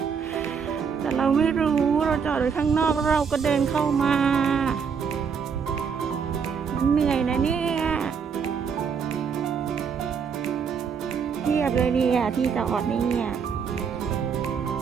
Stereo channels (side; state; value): left; quieter; 6.4 dB